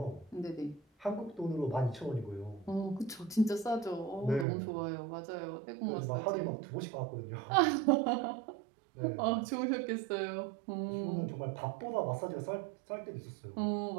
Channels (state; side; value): drops out; left; at 4.5 s